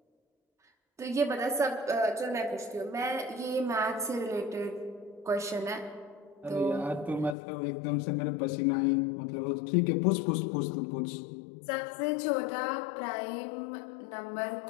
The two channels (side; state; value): right; drops out; at 7.4 s